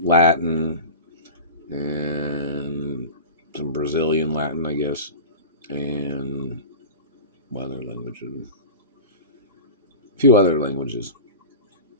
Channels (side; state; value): both; inverted; correlation -0.32